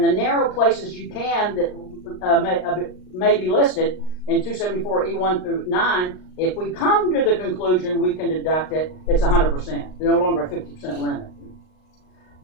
the narrow places you can that may be listed in 274E1 through 9, if we come to the conclusion we can deduct it, it's 100%. No longer a 50% limit.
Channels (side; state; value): right; late; 38 ms